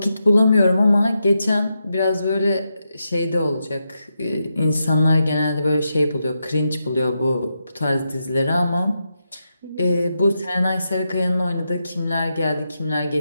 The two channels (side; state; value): both; inverted; correlation -0.86